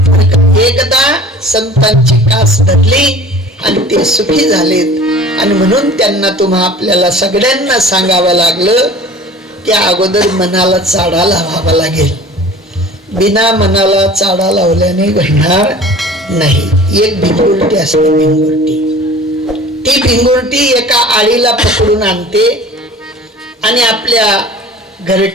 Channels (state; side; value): normal; both; correlation 0.44